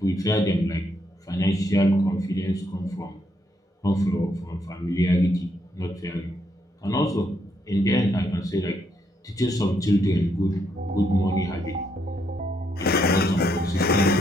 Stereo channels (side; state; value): both; normal; correlation 0.75